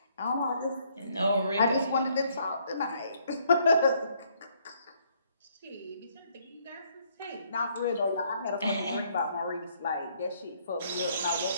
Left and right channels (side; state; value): both; inverted; correlation -0.68